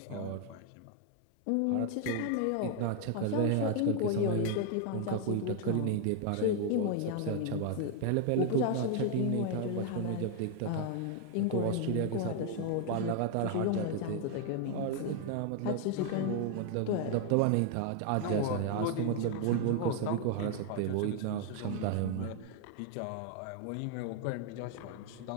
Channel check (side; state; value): both; different; correlation 0.00